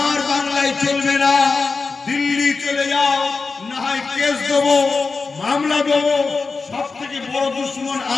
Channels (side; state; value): right; quieter; 4.3 dB